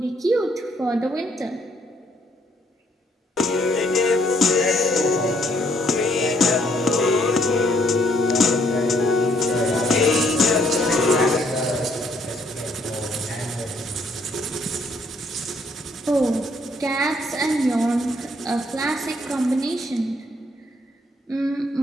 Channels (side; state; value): both; normal; correlation 0.68